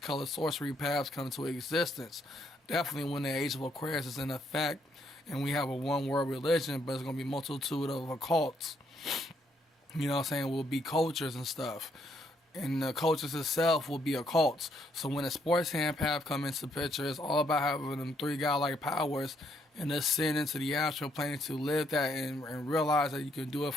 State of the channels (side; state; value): both; normal; correlation 0.73